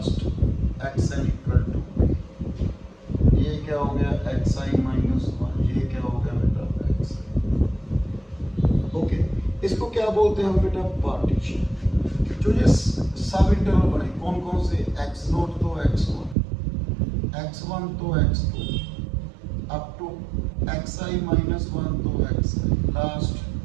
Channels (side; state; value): left; drops out; at 16.4 s